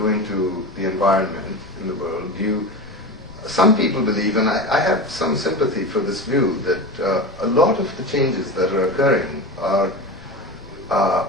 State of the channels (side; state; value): left; noise; rumble, 21 dB below the sound